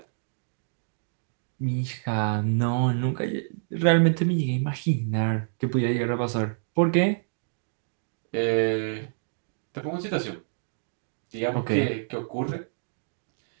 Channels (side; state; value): left; silent; digital silence